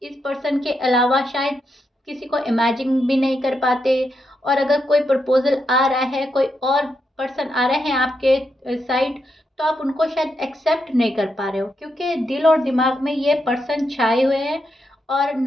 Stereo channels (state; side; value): normal; both; correlation 0.83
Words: इस पर्सन के अलावा शायद किसी को इमेजिन भी नहीं कर पाते। और अगर कोई प्रपोजल आ रहा है, कोई और पर्सन आ रहे हैं आपके साइड, तो आप उनको शायद एक्सेप्ट नहीं कर पा रहे हो क्योंकि दिल और दिमाग में ये पर्सन छाए हुए हैं। और